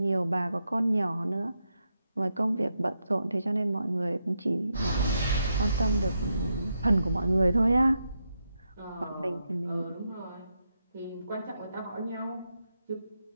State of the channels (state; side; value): inverted; both; correlation -0.83